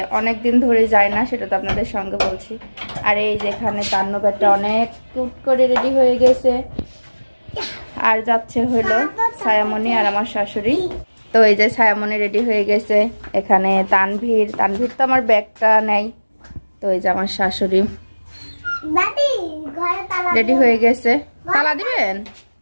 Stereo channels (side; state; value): both; inverted; correlation -1.00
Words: অনেক দিন ধরে যাই না, সেটা তো আপনাদের সঙ্গে বলছি। আর এই যেখানে তান্নবেরটা অনেক কিউট করে রেডি হয়ে গেছে, আর যাচ্ছে হলো ছায়ামণি আর আমার শাশুড়ি। তো এই যে ছায়ামণি রেডি হয়ে গেছে, এখানে তানভীর তো আমার ব্যাগটা নেই। তো এই যে আমার শাশুড়ি রেডি হয়ে গেছে। তালা দিবেন?